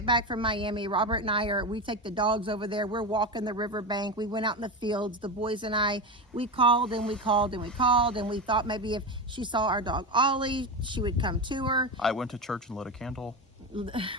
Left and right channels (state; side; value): normal; both; correlation 0.19